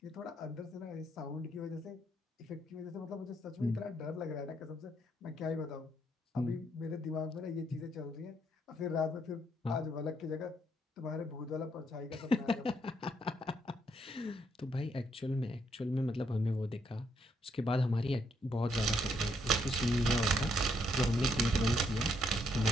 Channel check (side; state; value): both; normal; correlation 0.73